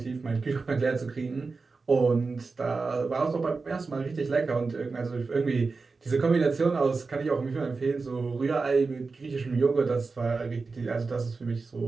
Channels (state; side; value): quieter; left; 4.2 dB